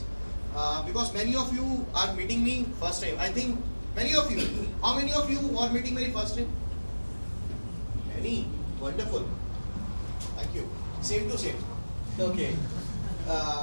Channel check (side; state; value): both; inverted; correlation -1.00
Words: because many of you are meeting me first time. I think many of you. How many of you are meeting me first time? Many. Wonderful. Thank you. Same to same. Okay.